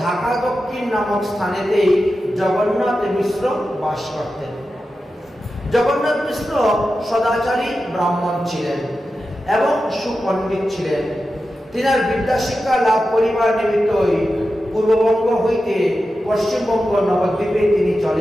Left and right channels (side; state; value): both; normal; correlation 0.91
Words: ঢাকা দক্ষিণ নামক স্থানেতেই জগন্নাথ মিশ্র বাস করতেন। জগন্নাথ মিশ্র সদাচারী ব্রাহ্মণ ছিলেন এবং সুপণ্ডিত ছিলেন। তিনার বিদ্যাশিক্ষা লাভ করিবার নিমিত্তই পূর্ববঙ্গ হইতে পশ্চিমবঙ্গ নবদ্বীপে তিনি